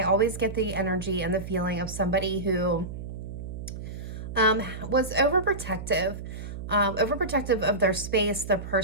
always get the energy and the feeling of somebody who was overprotective of their space, their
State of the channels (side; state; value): right; noise; hum, 9 dB below the sound